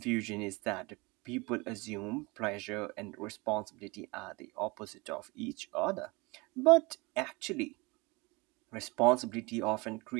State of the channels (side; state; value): left; quieter; 25.4 dB